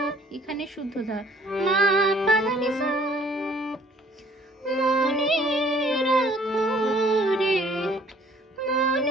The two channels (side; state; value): both; normal; correlation 0.57